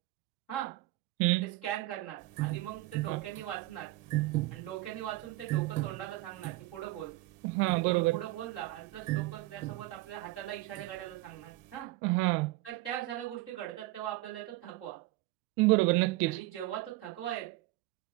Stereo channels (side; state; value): left; quieter; 18.5 dB